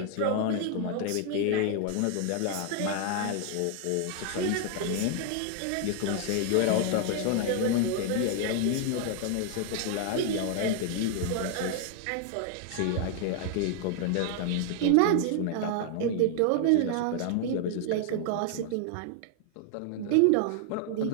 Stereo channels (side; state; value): both; different; correlation 0.00